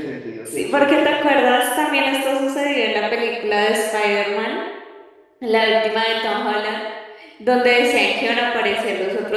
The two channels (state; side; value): identical; both; correlation 1.00